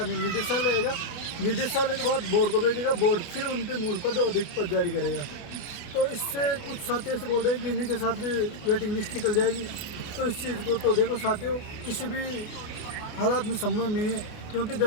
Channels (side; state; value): right; late; 28 ms